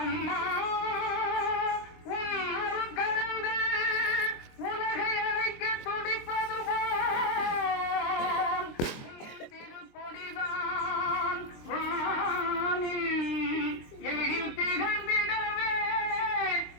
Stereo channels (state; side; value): late; right; 23 ms